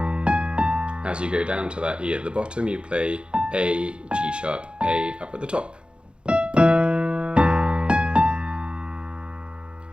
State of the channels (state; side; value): late; left; 0.055 ms